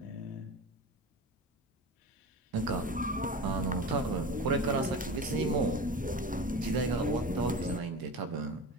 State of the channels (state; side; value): normal; both; correlation 0.32